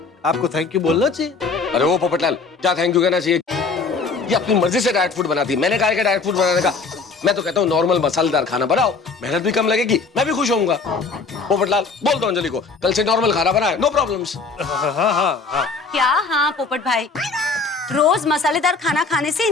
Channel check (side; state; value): right; quieter; 4.3 dB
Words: आपको थैंक यू बोलना चाहिए। अरे वो पोपटलाल, क्या थैंक यू कहना चाहिए? ये अपनी मर्जी से डाइट फूड बनाती है, मैंने कहा कि डाइट फूड बनाने का। मैं तो कहता हूँ नॉर्मल मसालेदार खाना बनाओ, मेहनत भी कम लगेगी, मैं भी खुश होऊंगा। पोपटलाल, बोल दो अंजलि को कल से नॉर्मल खाना बनाए, नो प्रॉब्लम्स। हाँ। क्या हाँ पोपट भाई, रोज मसालेदार खाना खाने से